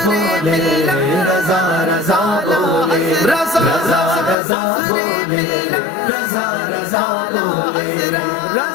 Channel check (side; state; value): right; drops out; at 4.4 s